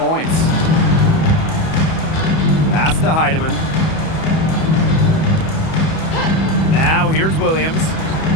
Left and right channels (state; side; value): late; right; 31 ms